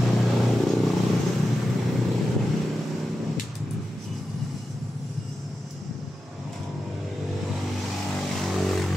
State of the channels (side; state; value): both; normal; correlation 0.91